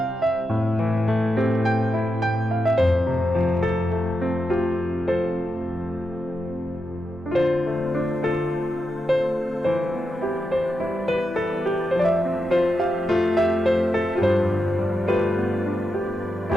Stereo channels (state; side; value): normal; both; correlation 0.87